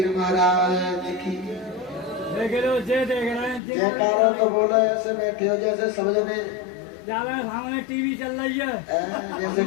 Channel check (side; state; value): right; drops out; at 3.6 s